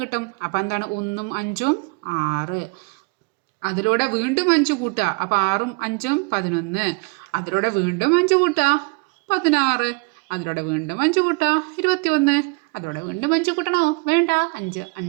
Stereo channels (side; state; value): left; quieter; 30.0 dB